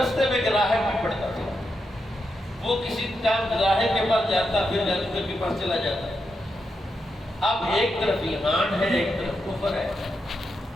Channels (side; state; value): both; normal; correlation 0.85